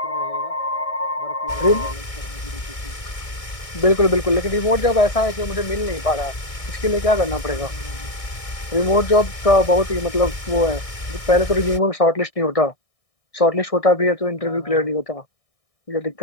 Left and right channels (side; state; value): right; late; 1.6 ms